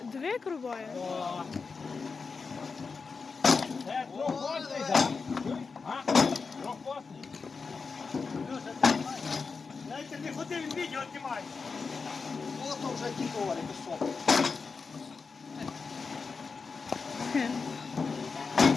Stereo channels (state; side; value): quieter; right; 4.8 dB